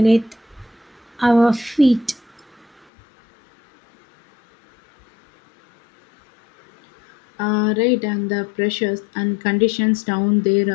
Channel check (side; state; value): right; drops out; at 2.9 s